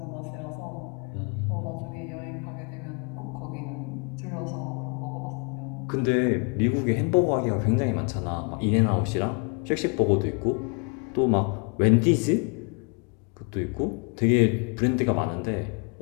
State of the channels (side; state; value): right; quieter; 35.5 dB